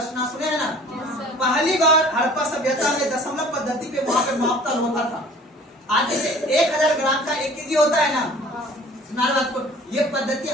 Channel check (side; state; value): both; normal; correlation 0.49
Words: ना, सुने है ना। पहली बार हड़प्पा सभ्यता में दशमलव पद्धति पे वहां पे मापतल होता था। आज जैसे 1000 ग्राम का 1 केजी होता है ना, बात को ये पद्धति